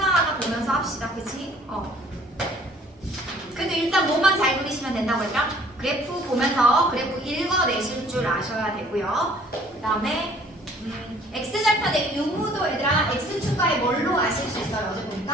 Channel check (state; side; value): normal; both; correlation 0.56